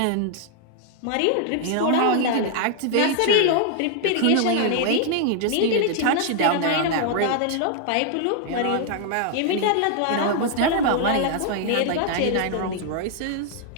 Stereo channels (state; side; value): different; both; correlation 0.00